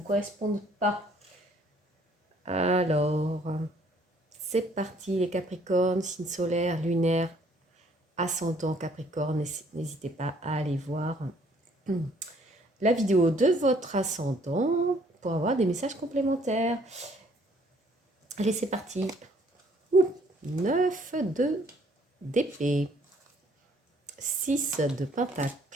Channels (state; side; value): normal; both; correlation 0.62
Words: correspondent pas. Alors, c'est parti les Capricornes, signe solaire, lunaire, ascendant Capricorne, n'hésitez pas à aller voir la vidéo de votre ascendant pour avoir des messages complémentaires. Allez, c'est parti. 9 de d'épée, 6 de